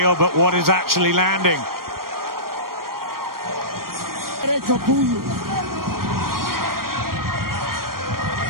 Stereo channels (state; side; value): late; left; 0.92 ms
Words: but what is actually landing?